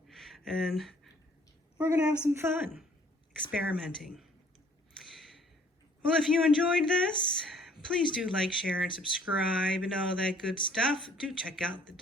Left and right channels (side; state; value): both; normal; correlation 0.59